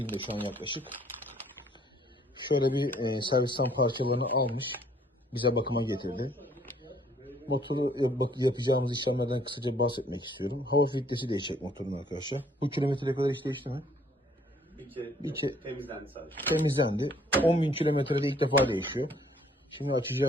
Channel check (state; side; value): normal; both; correlation 0.62